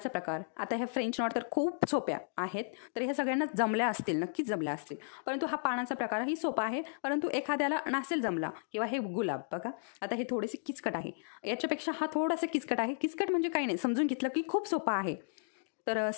प्रकार. आता ह्या फ्रेंच नॉट तर खूप सोप्या आहेत, तर ह्या सगळ्यांना जमल्या असतील, नक्कीच जमल्या असतील. परंतु हा पानाचा प्रकारही सोपा आहे, परंतु एखाद्याला नसेल जमला. किंवा हे गुलाब बघा, आता हे थोडेसे किचकट आहे, याच्यापेक्षा हा थोडासा किचकट आहे. किचकट म्हणजे काही नाही, समजून घेतलं की खूप सोपा आहे. तर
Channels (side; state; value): right; silent; digital silence